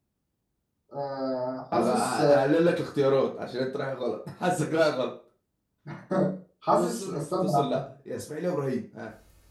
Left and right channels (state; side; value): identical; both; correlation 1.00